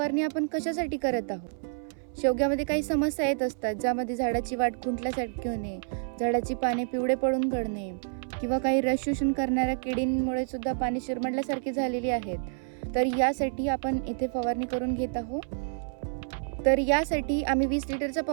आपण कशासाठी करत आहोत? शेवग्यामध्ये काही समस्या येत असतात, ज्यामध्ये झाडाची वाढ खुंटल्यासारखी होणे, झाडाची पाने पिवळे पडून गळणे किंवा काही रस शोषण करणाऱ्या किडींमुळे सुद्धा पाने शिरमडल्यासारखी झालेली आहेत. यासाठी आपण इथे फवारणी करून घेत आहोत. यासाठी आम्ही 20 लिटरच्या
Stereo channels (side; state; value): left; silent; 59 dB below the other